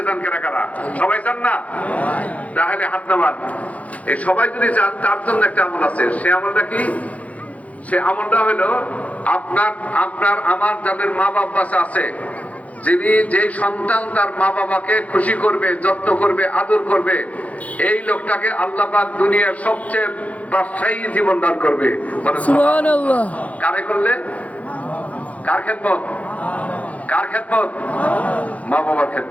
চান কিনা কারা? সবাই চান না? তাহলে হাত নামান। এই সবাই যদি চান, তার জন্য একটা আমল আছে। সে আমলটা কি? সে আমলটা হলো, আপনার আমার যাদের মা বাবা আছে, যিনি যেই সন্তান তার মা বাবাকে খুশি করবে, যত্ন করবে, আদর করবে, এই লোকটাকে আল্লাহ পাক দুনিয়ার সবচেয়ে ব্যবসায়ী জীবন দান করবে। সুবহানাল্লাহ। কারে করলে? কার খেদমত? কার খেদমত? মা বাবার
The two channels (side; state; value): right; late; 0.068 ms